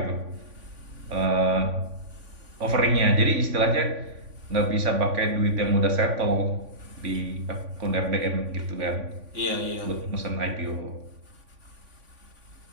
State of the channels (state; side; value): late; left; 3.5 ms